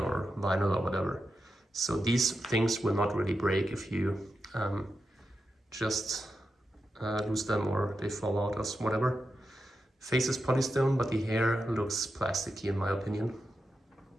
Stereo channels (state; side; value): normal; both; correlation 0.88